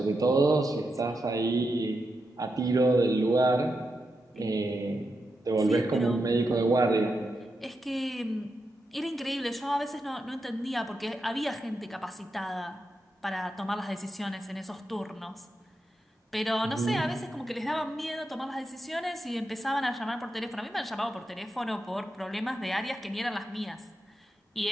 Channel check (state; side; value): normal; both; correlation 0.86